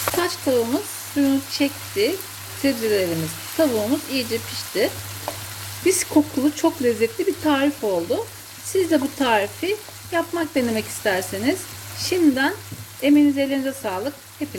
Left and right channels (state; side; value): identical; both; correlation 1.00